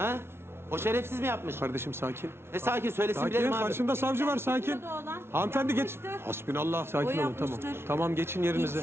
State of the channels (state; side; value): late; left; 0.12 ms